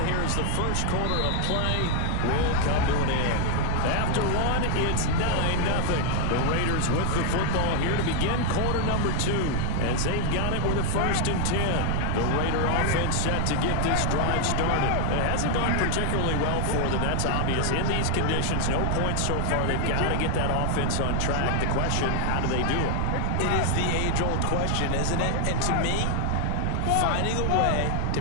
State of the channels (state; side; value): different; both; correlation 0.00